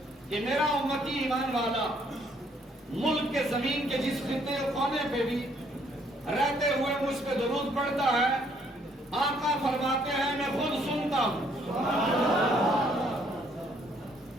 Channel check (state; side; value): normal; both; correlation 0.67